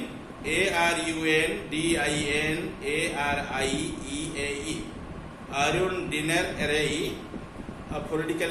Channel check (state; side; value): identical; both; correlation 1.00